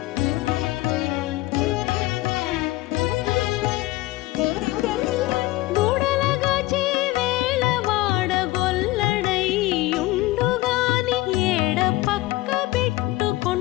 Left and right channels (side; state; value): right; quieter; 18.8 dB